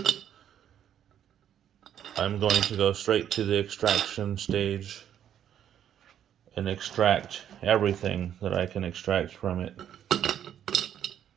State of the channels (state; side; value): quieter; left; 9.9 dB